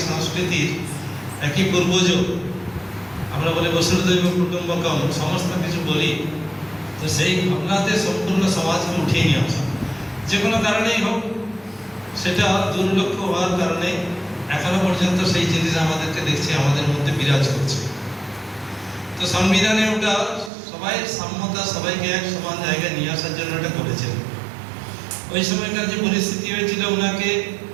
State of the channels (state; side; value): drops out; left; at 20.5 s